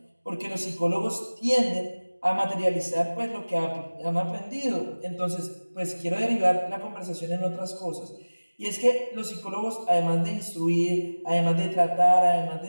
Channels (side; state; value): both; inverted; correlation -1.00